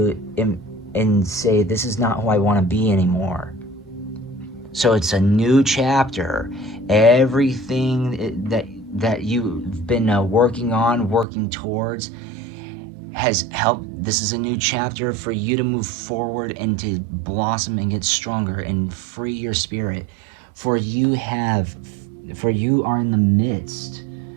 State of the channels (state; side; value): drops out; left; at 11.2 s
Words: and say, this is not who I want to be anymore. So it's a new chapter. Everything that you've been working towards, has helped. This is a new chapter for you to move forward and to blossom and get stronger and free your spirit. For you are in the midst